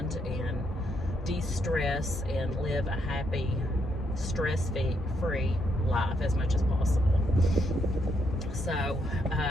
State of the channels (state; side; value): normal; both; correlation 0.76